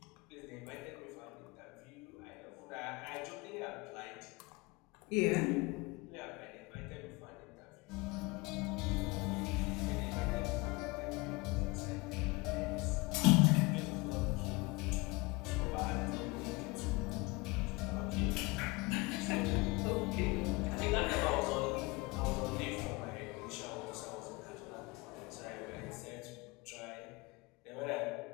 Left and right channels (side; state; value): right; quieter; 24.7 dB